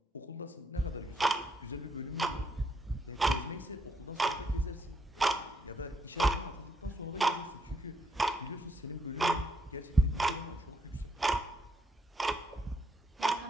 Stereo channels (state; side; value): normal; both; correlation 0.76